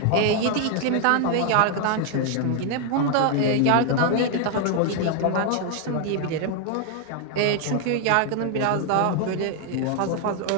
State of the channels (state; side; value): different; both; correlation 0.00